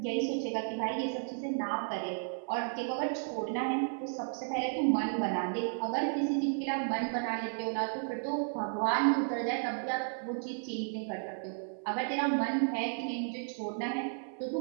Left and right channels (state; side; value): silent; left; 55 dB below the other